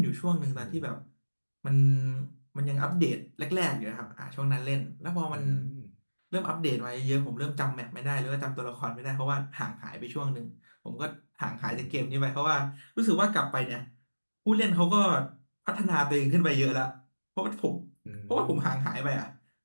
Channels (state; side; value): inverted; both; correlation -1.00